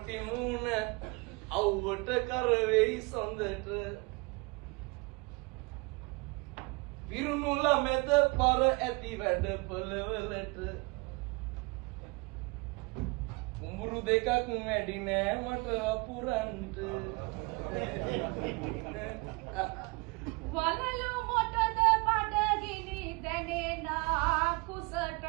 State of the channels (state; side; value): quieter; left; 27.4 dB